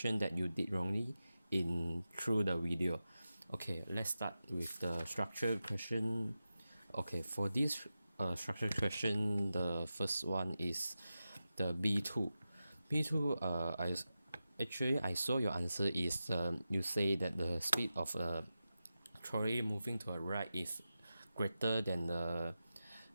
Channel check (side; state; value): both; inverted; correlation -0.92